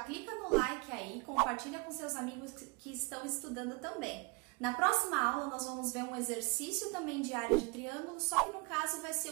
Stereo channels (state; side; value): quieter; left; 30.4 dB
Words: clica no like aí, compartilha com seus amigos que estão estudando também. Na próxima aula, nós vamos ver um exercício também de área de triângulo, só que no caso vai ser